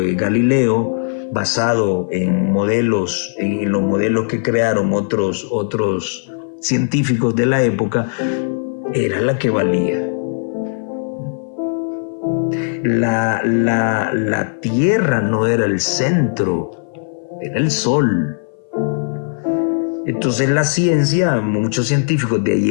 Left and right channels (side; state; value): right; silent; 57 dB below the other